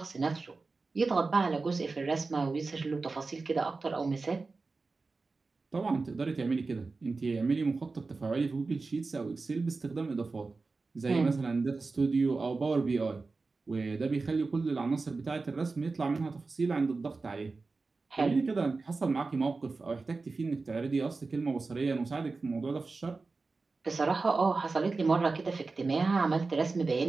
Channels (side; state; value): left; quieter; 3.9 dB